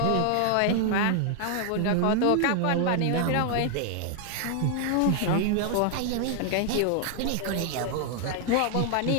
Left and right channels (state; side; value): different; both; correlation 0.00